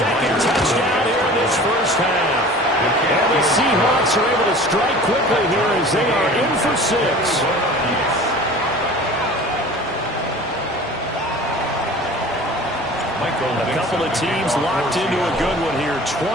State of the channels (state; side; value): normal; both; correlation 0.42